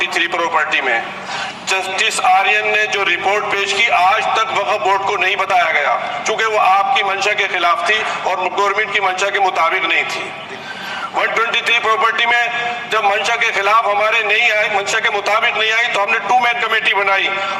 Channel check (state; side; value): identical; both; correlation 1.00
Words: प्रॉपर्टी में। जस्टिस आर्यन ने जो रिपोर्ट पेश की, आज तक वक्फ बोर्ड को नहीं बताया गया, चूंकि वो आपकी मंशा के खिलाफ थी और गवर्नमेंट की मंशा के मुताबिक नहीं थी। 123 प्रॉपर्टी में जब मंशा के खिलाफ हमारे नहीं आई, मंशा के मुताबिक नहीं आई, तो हमने 2 मैन कमेटी बनाई,